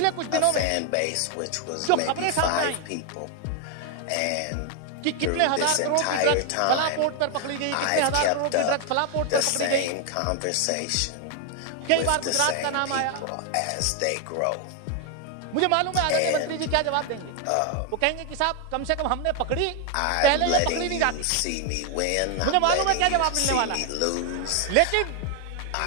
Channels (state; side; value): different; both; correlation 0.00